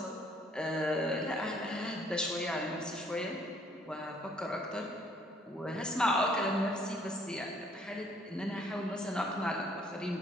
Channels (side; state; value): both; normal; correlation 0.63